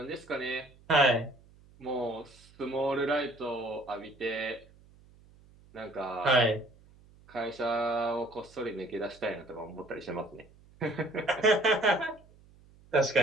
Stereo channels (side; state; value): right; noise; hum, 26 dB below the sound